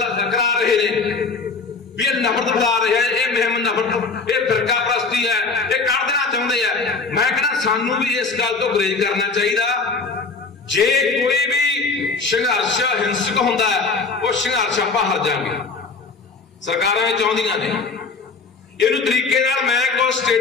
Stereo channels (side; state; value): right; quieter; 4.3 dB